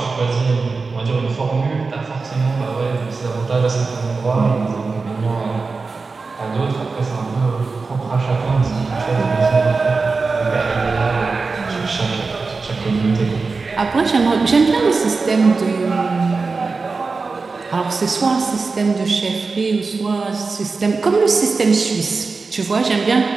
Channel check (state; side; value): quieter; left; 4.2 dB